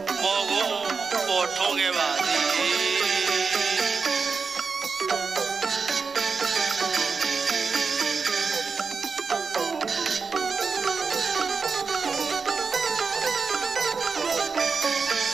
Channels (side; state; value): left; quieter; 5.0 dB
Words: မောကိုပေါ်ထုံးခဲ့ပါသည်